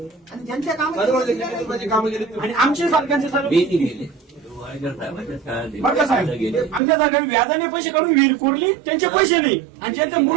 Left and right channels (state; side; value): drops out; left; at 6.8 s